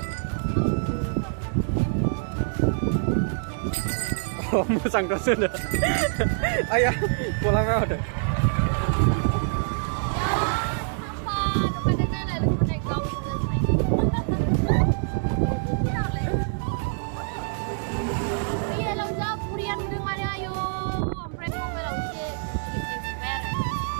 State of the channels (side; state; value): left; silent; digital silence